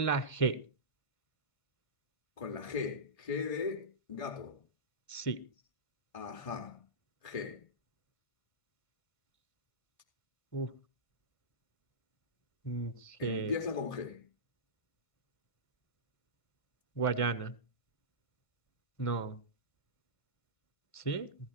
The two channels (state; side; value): late; right; 1.5 ms